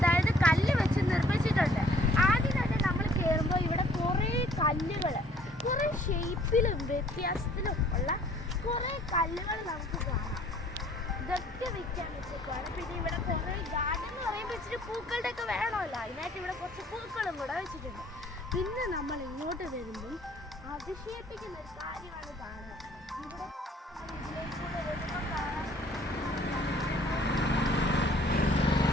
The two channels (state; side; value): normal; both; correlation 0.58